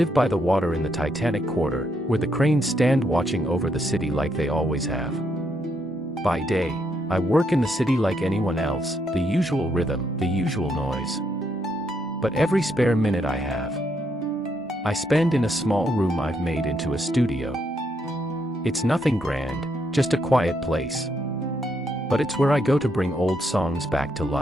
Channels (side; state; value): both; normal; correlation 0.76